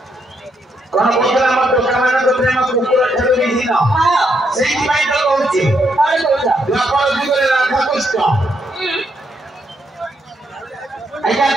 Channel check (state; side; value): normal; both; correlation 0.77